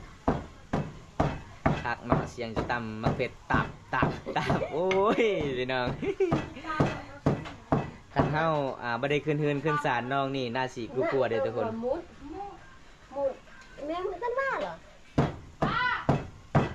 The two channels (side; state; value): both; identical; correlation 1.00